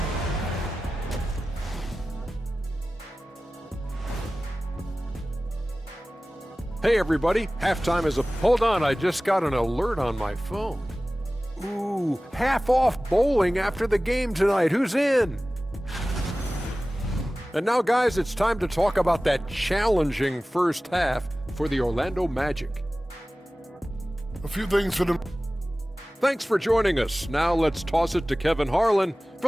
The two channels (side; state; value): both; normal; correlation 0.97